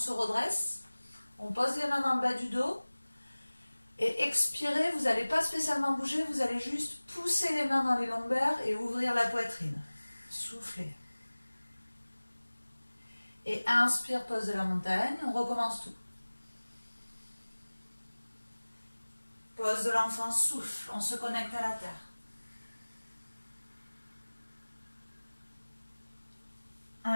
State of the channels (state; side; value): inverted; both; correlation -1.00